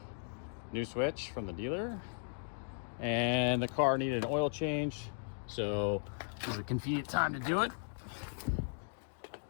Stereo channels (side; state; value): right; silent; digital silence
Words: new switch from the dealer, and the car needed an oil change, so this is a convenient time to do it.